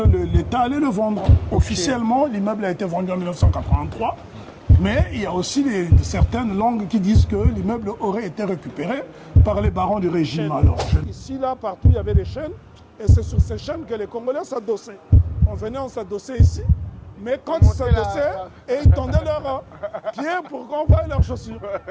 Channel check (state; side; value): identical; both; correlation 1.00